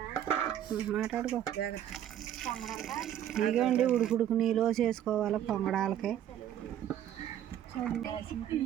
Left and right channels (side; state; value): left; quieter; 10.8 dB